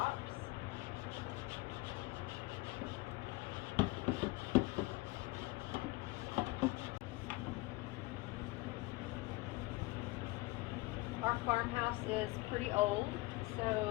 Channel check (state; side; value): quieter; right; 22.1 dB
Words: Our farmhouse is pretty old,